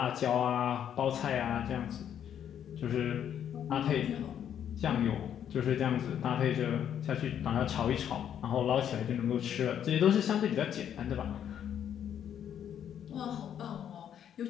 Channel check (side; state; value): right; quieter; 9.4 dB